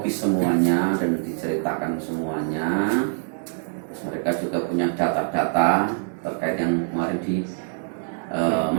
semuanya dan diceritakan semuanya. Terus mereka juga punya data-data terkait yang kemarin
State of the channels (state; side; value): silent; left; digital silence